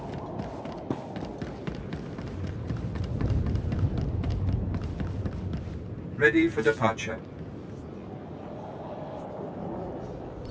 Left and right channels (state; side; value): identical; both; correlation 1.00